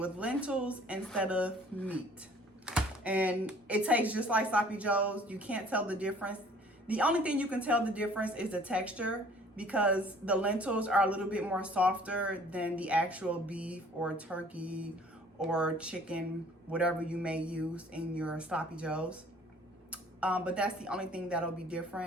lentils instead of meat. And it tastes just like sloppy joes. You can't tell the difference. The only thing you can tell the difference is the texture, because the lentils are a little bit more softer than the actual beef or turkey or chicken, whatever you may use in your sloppy joes. But that's the only thing that'll be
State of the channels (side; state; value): both; normal; correlation 0.54